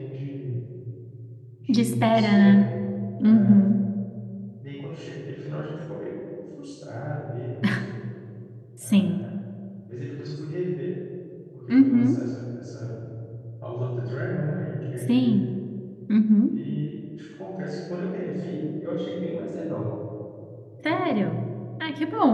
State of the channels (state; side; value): identical; both; correlation 1.00